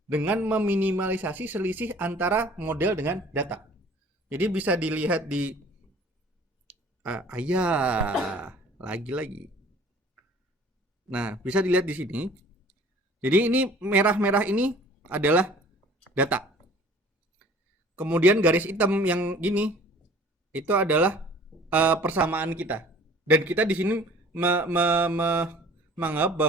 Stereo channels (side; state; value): both; normal; correlation 0.50